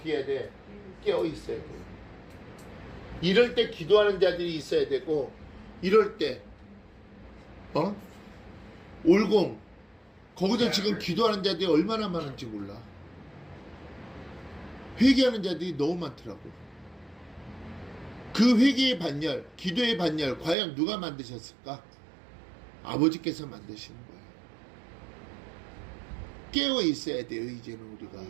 해야 돼? 깨어 있어야 돼. 이럴 때 기도하는 자들이 있어야 되고, 이럴 때 올공 거기서 지금 기도하는 자들이 얼마나 많은지 몰라. 회개하는 자들이 너무 많더라고. 그 회개의 반열, 기도의 반열 과연 누가 만드셨을까? 아버지께서 만드시는 거예요. 깨어 있어야 돼요. 이제는 우리가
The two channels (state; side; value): drops out; left; at 20.6 s